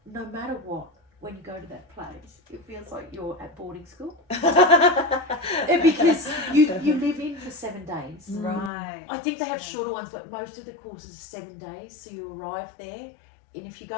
no matter what, when you go to that place, it feels like you're at boarding school. Because you live in for 7 days. Right. I think they have shorter ones, but most of the courses are 7 days. So you arrive there, and if you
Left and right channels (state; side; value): drops out; right; at 8.7 s